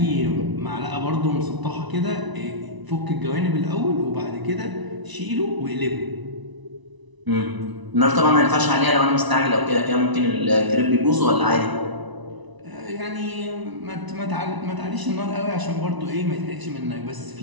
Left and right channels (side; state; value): left; late; 1.0 ms